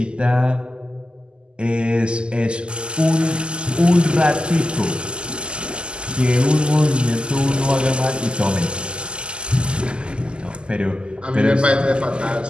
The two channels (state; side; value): late; left; 0.050 ms